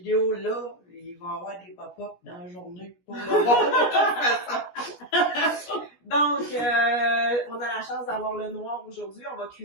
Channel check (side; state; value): right; late; 17 ms